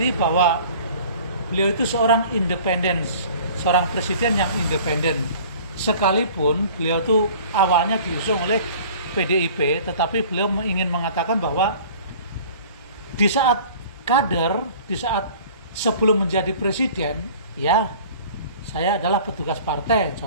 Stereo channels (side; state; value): both; inverted; correlation -0.47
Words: bahwa beliau itu seorang independen, seorang presiden yang independen. Sekalipun beliau itu awalnya diusung oleh PDIP, tetapi beliau ingin mengatakan bahwa di saat kader, di saat sebelum menjadi presiden, ya saya adalah petugas partai,